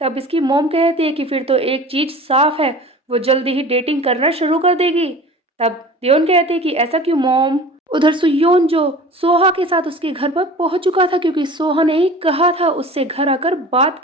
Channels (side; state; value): both; normal; correlation 0.40